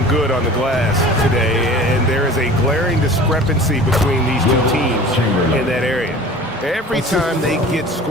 good on the glass today, and there is a glaring discrepancy between these two teams in that area. Every time they get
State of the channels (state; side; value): normal; both; correlation 0.41